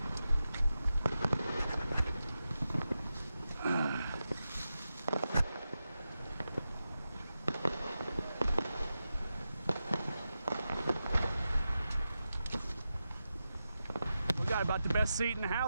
Got about the best seat in the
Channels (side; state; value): both; inverted; correlation -0.90